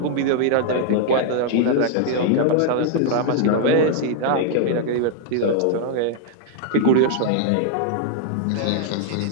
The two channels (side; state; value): both; different; correlation -0.01